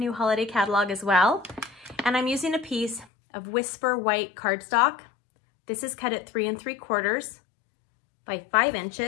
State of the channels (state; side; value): drops out; right; at 3.1 s